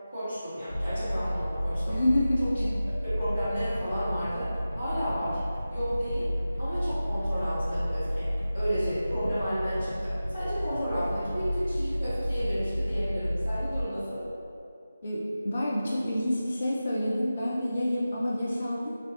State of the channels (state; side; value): inverted; both; correlation -0.95